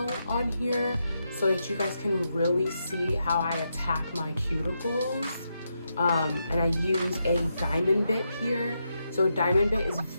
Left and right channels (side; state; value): both; inverted; correlation -0.84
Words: on here so that you guys can really see how I attack my cuticles. And I use a diamond bit here. So a diamond bit is